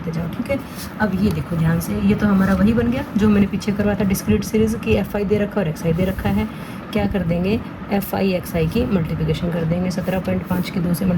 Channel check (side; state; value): both; identical; correlation 1.00